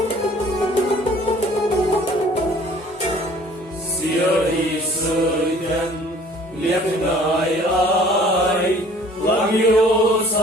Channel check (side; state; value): both; normal; correlation 0.53